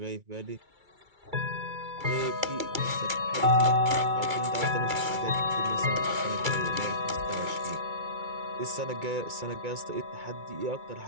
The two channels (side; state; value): left; late; 2.3 ms